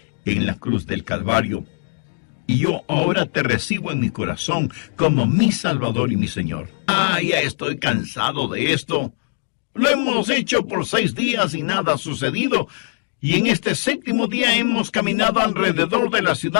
en la cruz del Calvario, y yo ahora te recibo en mi corazón como mi Salvador y mi Señor. Ya estoy cansado de esto. Lo hemos hecho por 6 días y nada ha sucedido, y en este séptimo día hemos caminado alrededor de la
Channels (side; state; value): right; silent; digital silence